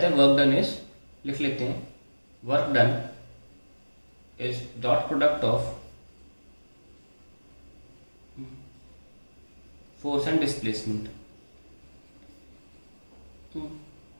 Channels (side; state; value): both; inverted; correlation -1.00